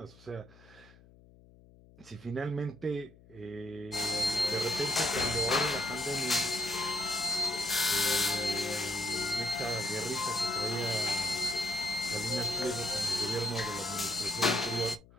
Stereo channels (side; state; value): left; noise; hum, 25 dB below the sound